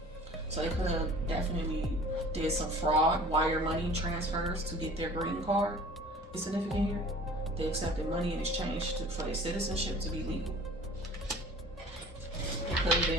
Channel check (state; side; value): normal; both; correlation 0.46